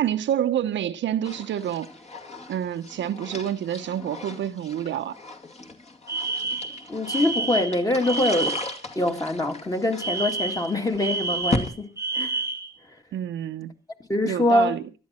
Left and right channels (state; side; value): normal; both; correlation 0.42